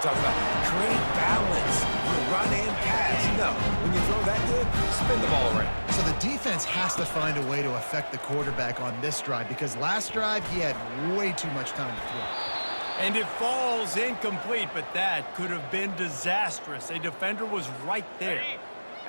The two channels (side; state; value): both; inverted; correlation -1.00